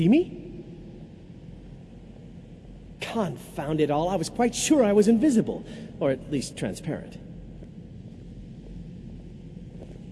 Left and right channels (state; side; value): identical; both; correlation 1.00